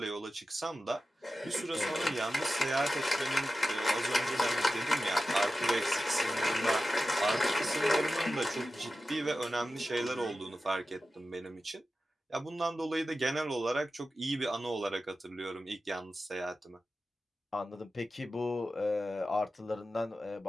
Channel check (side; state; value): both; normal; correlation 0.93